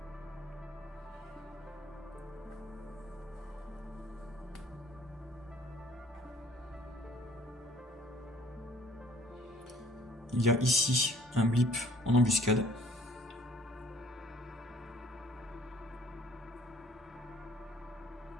Il y a ici un blip en embuscade.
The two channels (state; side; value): normal; both; correlation 0.57